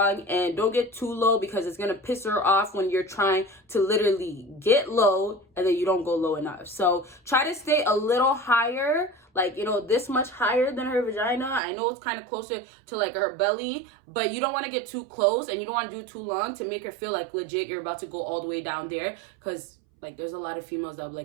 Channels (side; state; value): left; drops out; at 11.6 s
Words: and don't get too low because it's going to piss her off when you're trying to literally get low and then you don't go low enough. So try to stay a little higher, like, you know, this much higher than her vagina. I know it's kind of closer to like her belly, but you don't want to get too close and you don't want to do it too long to make her feel like legit you're about to go all the way down there. Because like there's a lot of females that are